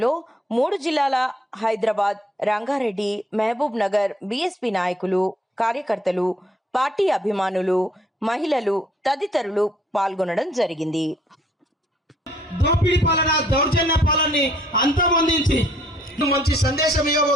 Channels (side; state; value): both; normal; correlation 0.64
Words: 3 జిల్లాల హైదరాబాద్, రంగారెడ్డి, మహబూబ్ నగర్ బీఎస్పీ నాయకులు, కార్యకర్తలు, పార్టీ అభిమానులు, మహిళలు తదితరులు పాల్గొనడం జరిగింది. దోపిడీ పాలన, దౌర్జన్య పాలనని అంతమొందించి మంచి సందేశం